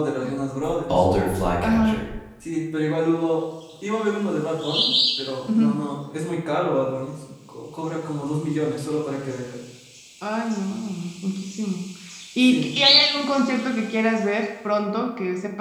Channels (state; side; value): identical; both; correlation 1.00